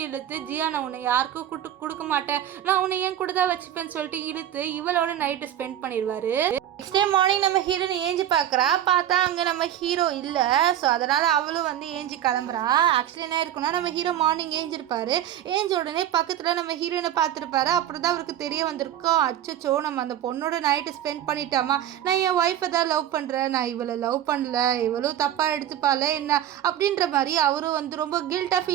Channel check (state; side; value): quieter; left; 11.5 dB